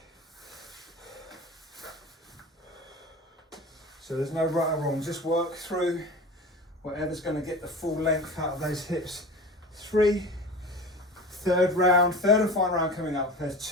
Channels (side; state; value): both; normal; correlation 0.34